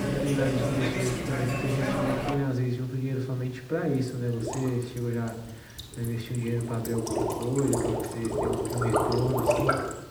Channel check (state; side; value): identical; both; correlation 1.00